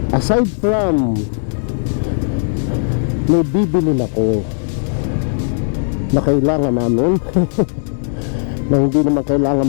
Aside from may bibilin ako na kailangan namin na hindi naman kailangan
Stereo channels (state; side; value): silent; right; digital silence